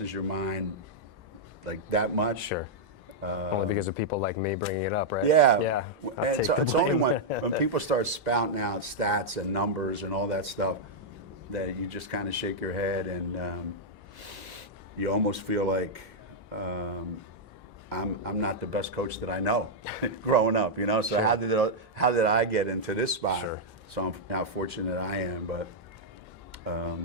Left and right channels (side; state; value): both; normal; correlation -0.05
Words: your mind like that much. Sure. Only because of people like me bringing it up, right? Yeah. Yeah. It's only when people start spouting out stats and numbers and all that stuff that you just kind of shake your head, and you almost feel like I'm not the best coach that I know growing up, you know. So how did I get into this spot? Sure. So how fortunate I am, but